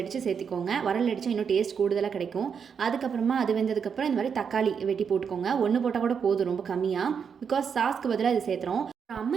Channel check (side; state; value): left; quieter; 6.7 dB